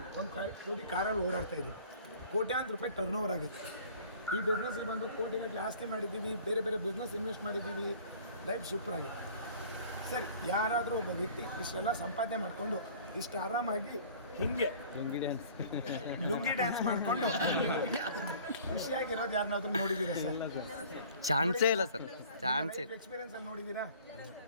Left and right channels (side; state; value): both; inverted; correlation -0.49